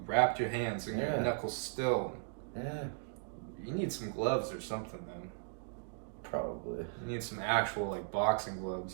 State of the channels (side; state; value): left; silent; digital silence